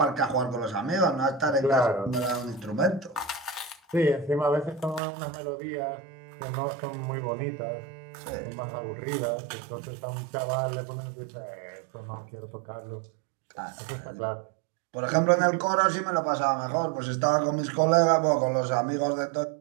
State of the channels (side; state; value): left; drops out; at 5.0 s